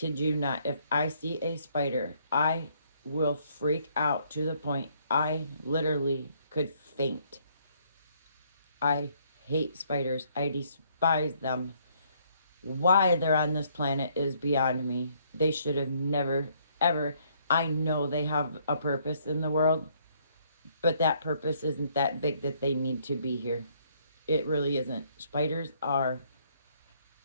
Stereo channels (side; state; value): both; inverted; correlation -0.67